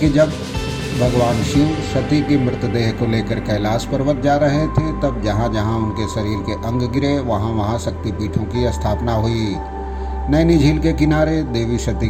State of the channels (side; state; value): both; identical; correlation 1.00